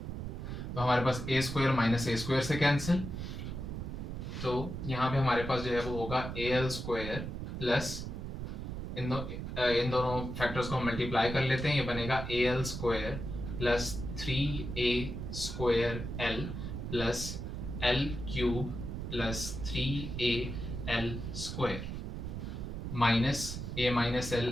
तो हमारे पास a square minus a square से कैंसिल, तो यहाँ पे हमारे पास जो है वो होगा ए एल स्क्वायर प्लस इन दोनों फैक्टर्स को हम मल्टीप्लाई कर लेते हैं, ये बनेगा a l square plus 3a square l plus l cube plus 3al square minus a minus l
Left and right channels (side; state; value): right; noise; rumble, 5 dB below the sound